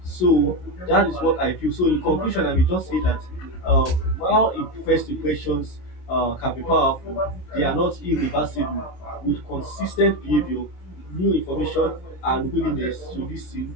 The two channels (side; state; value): right; late; 27 ms